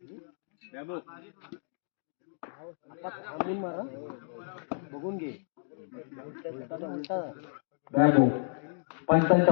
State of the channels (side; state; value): right; silent; digital silence